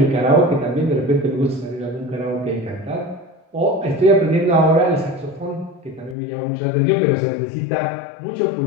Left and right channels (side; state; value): right; drops out; at 6.2 s